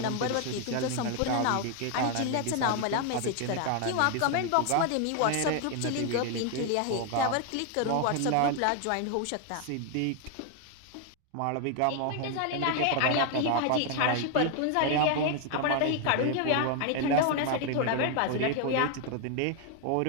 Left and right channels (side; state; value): both; different; correlation 0.01